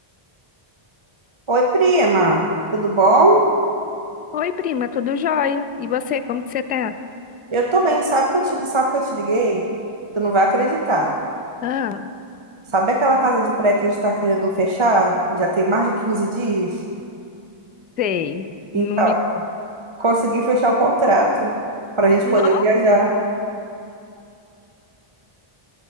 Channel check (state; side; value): late; left; 1.4 ms